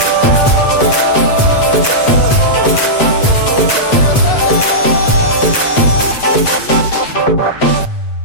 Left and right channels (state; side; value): late; right; 8.3 ms